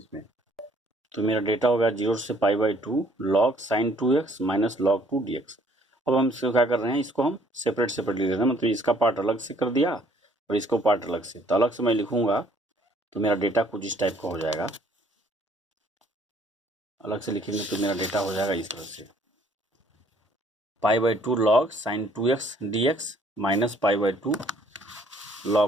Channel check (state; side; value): normal; both; correlation 0.62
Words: तो मेरा डेटा होगा 0 से π/2 log sin 2x minus log 2 dx। अब हम इसको क्या कर रहे हैं, इसको हम सेपरेट लिख रहे हैं, मतलब इसका पार्ट अलग से कर दिया और इसको पार्ट अलग से। तो अलग से मैं लिखूंगा तो मेरा डेटा कुछ इस टाइप का हो जाएगा, अलग से लिखेंगे तो मेरा डेटा हो जाएगा इस तरह से, π/2 log sin 2x dx minus π/2